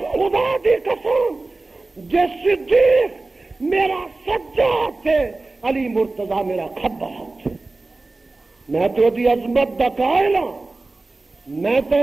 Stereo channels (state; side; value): quieter; left; 3.3 dB